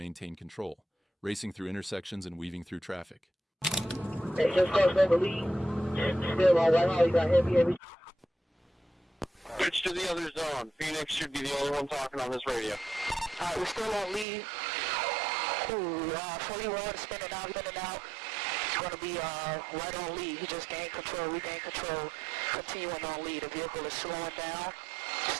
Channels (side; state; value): left; drops out; at 14.2 s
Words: control, racing through intersections and weaving through traffic. Hey, just crossed over Lee. Still on Whitehall, you got heavy. Switch to the other zone. Phoenix should be the only one talking on this radio. Alright, we're still on Lee. 41, spinning out. It's going to be right on Lee. He just gained control, regained control. Continuing on Lee. The vehicle is slowing down.